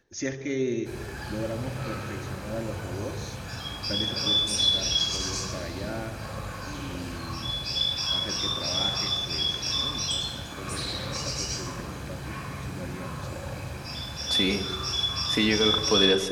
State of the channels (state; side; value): identical; both; correlation 1.00